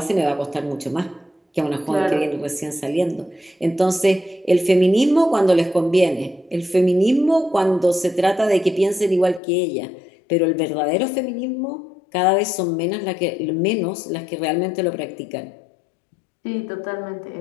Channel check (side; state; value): right; drops out; at 9.4 s